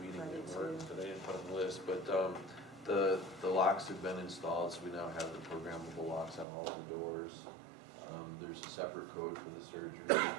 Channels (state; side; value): drops out; left; at 6.5 s